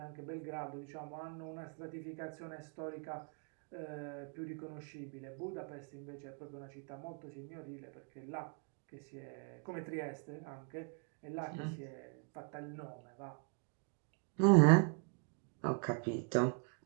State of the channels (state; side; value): quieter; left; 39.4 dB